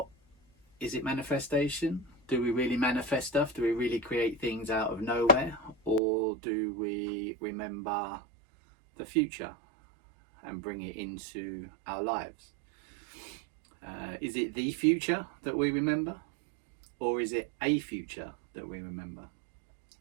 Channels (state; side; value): drops out; left; at 6.0 s